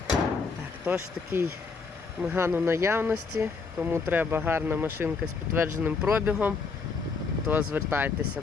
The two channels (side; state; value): right; quieter; 4.7 dB